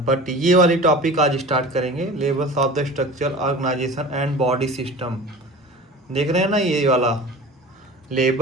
ये वाली टॉपिक आज स्टार्ट करेंगे, levels of the structure, organization and body system. देख रहे हैं ना ये वाला,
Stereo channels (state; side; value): normal; both; correlation 0.38